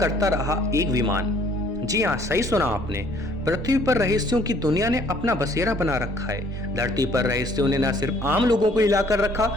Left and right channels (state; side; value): normal; both; correlation 0.60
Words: रहा एक विमान। जी हाँ, सही सुना आपने। पृथ्वी पर रहस्यों की दुनिया ने अपना बसेरा बना रखा है। धरती पर रहस्यों ने न सिर्फ आम लोगों को हिलाकर रखा,